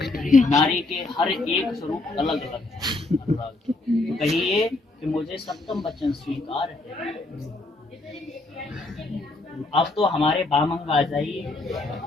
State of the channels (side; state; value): right; quieter; 3.1 dB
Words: नारी के हर एक स्वरूप अलग अलग है। तो कहिए कि मुझे सप्तम वचन स्वीकार है। अब तो हमारे बामंग आ जाइए।